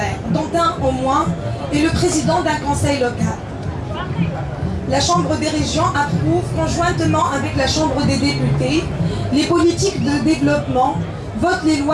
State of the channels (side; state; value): both; identical; correlation 1.00